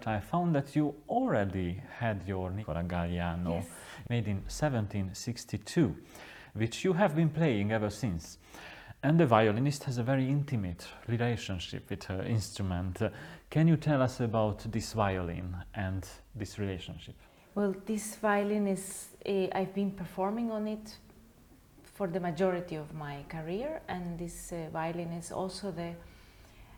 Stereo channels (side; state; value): both; identical; correlation 1.00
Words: I found that you already had your Nicola Galliano, yes, made in 1762, which you have been playing ever since. And the violinist has a very intimate relationship with her instrument. Can you tell us about this violin and this relationship? Well, this violin is, I've been performing on it for the majority of my career, and this violin is also the